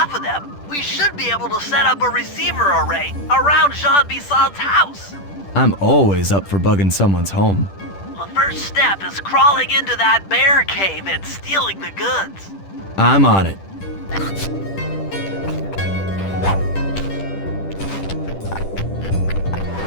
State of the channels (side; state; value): right; late; 10 ms